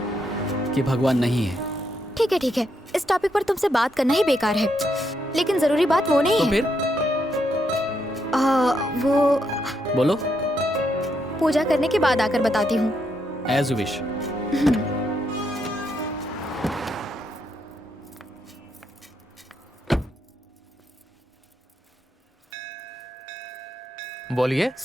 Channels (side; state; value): both; normal; correlation 0.79